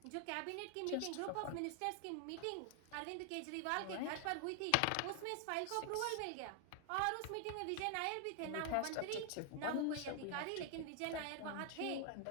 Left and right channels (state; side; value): different; both; correlation 0.00